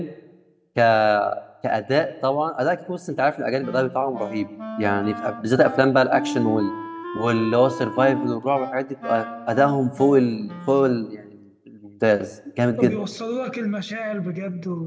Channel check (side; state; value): both; identical; correlation 1.00